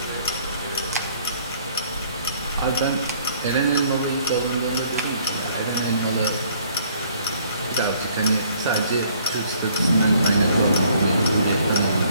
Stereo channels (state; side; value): inverted; both; correlation -0.61